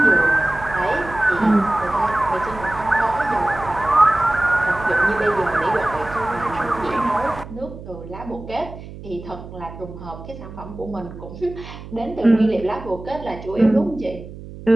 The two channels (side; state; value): right; noise; hum, 14 dB below the sound